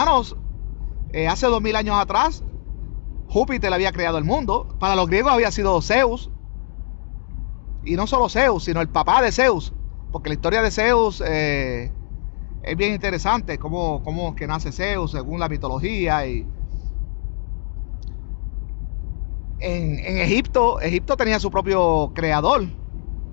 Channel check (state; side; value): silent; right; digital silence